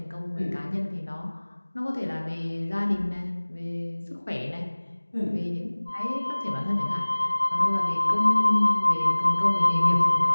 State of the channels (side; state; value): both; inverted; correlation -1.00